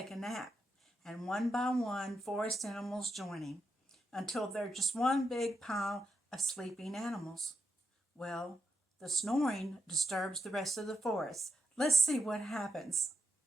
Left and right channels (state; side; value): normal; both; correlation 0.83